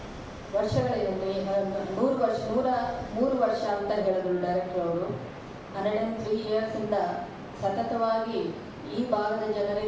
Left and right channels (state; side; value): identical; both; correlation 1.00